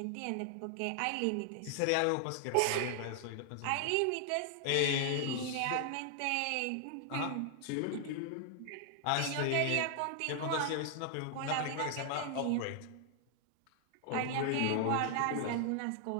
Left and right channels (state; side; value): different; both; correlation 0.00